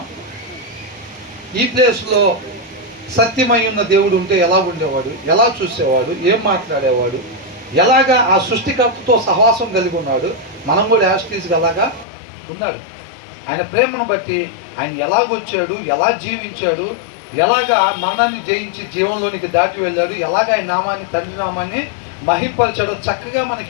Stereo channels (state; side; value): drops out; right; at 12.1 s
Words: ఈ ప్లేస్లో సత్యమై ఉన్న దేవుడు ఉంటే ఎలా ఉండేవాడు, ఎలా చూసేవాడు, ఏం మాట్లాడేవాడు, ఎలాగా ఆ సృష్టికర్తతో సహవాసం కలిగి ఉన్నాడు, మనం కూడా యాస్టీస్గా అలాగా ఉన్నాడు. ఆయన ప్రేమను బట్టి ఆయన ఎలాగొచ్చాడు, ఎలా జీవించాడు, ఎలాగా మరణాన్ని జయించి జీవంలోనికి దాటి వెళ్ళాడు, ఎలాగ ఆయన నామాన్ని, తండ్రి నామాన్ని మహింపరిచాడో చక్కగా